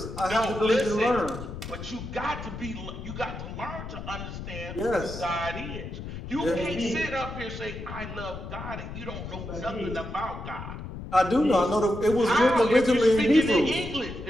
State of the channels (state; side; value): noise; left; rumble, 9 dB below the sound